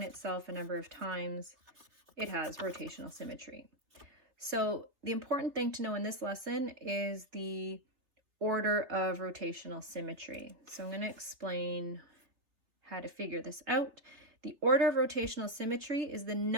itself a number of times, it has rotational symmetry. So the important thing to know in this lesson is the order of rotational symmetry. So I'm going to explain how to figure this out. The order of rotational symmetry is the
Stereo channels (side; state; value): left; late; 3.5 ms